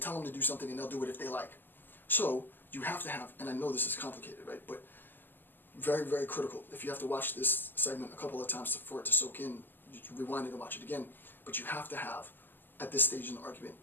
tell them to do something and they'll do it if they like. So you have to have, and I know this is complicated, right? But very, very critical. If you have to watch this segment a couple of times for it to soak in, you rewind it and watch it again. But you have to have, at this stage in the argument,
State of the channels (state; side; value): late; right; 0.096 ms